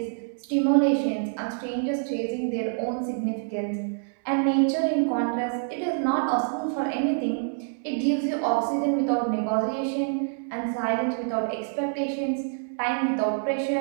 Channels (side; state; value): left; silent; digital silence